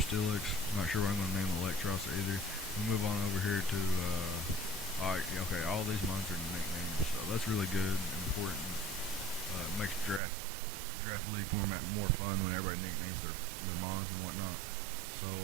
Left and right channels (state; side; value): drops out; left; at 10.2 s